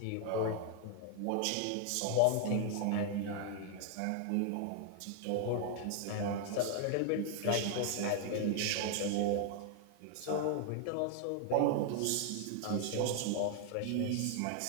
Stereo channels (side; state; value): both; different; correlation 0.00